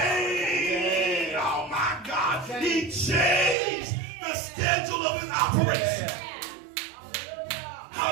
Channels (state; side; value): drops out; left; at 3.6 s